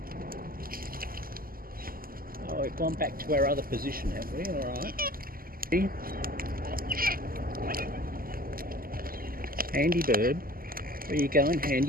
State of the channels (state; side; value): late; left; 0.42 ms